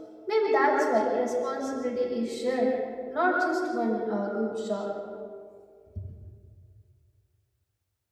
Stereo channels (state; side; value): identical; both; correlation 1.00